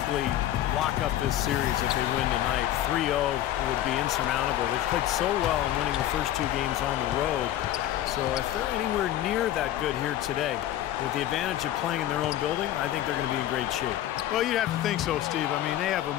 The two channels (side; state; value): right; quieter; 12.9 dB